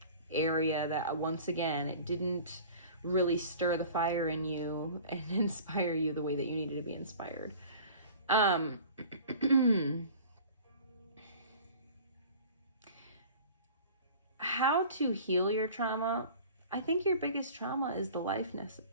area that, once again, it didn't really stir the fire in you and inspire you the way that you needed to be inspired. How to heal your trauma? I think your biggest trauma is the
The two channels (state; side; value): inverted; both; correlation -0.44